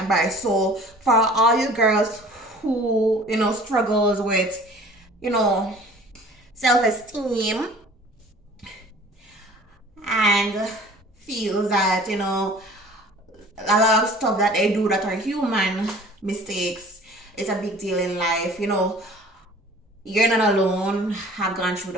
So for all you girls who struggles with self-esteem and feels that a lot of stuff that they do that are human mistakes, it's a big deal in life. You're not alone. Have gone through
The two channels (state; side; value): normal; both; correlation 0.48